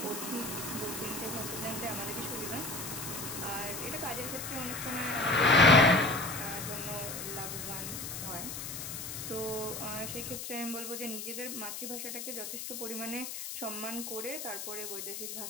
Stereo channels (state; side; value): noise; left; hiss, 6 dB below the sound